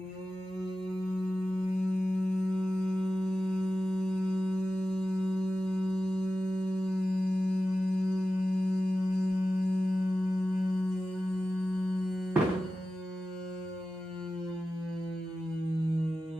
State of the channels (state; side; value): normal; both; correlation 0.94